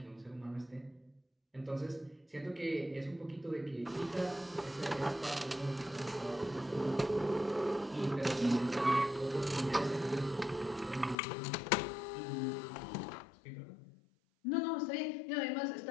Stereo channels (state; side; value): drops out; right; at 11.2 s